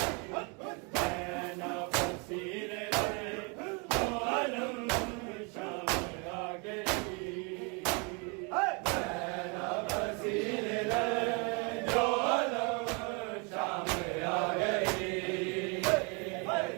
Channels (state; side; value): quieter; left; 32.9 dB